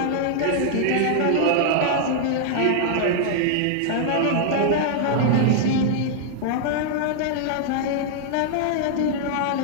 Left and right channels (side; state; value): both; different; correlation -0.01